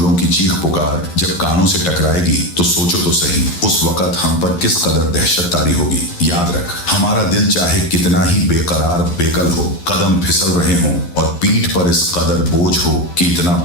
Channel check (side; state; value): right; late; 11 ms